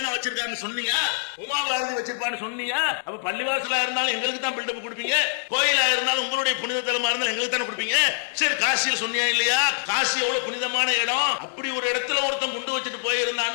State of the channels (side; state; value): right; silent; 62 dB below the other